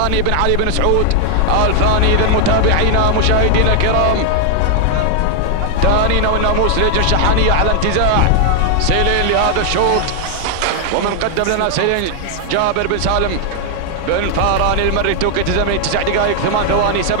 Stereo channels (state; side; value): different; both; correlation 0.00